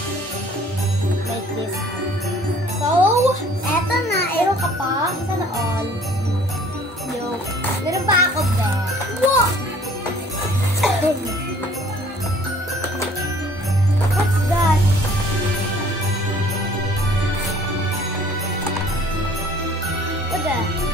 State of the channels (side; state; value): both; normal; correlation 0.54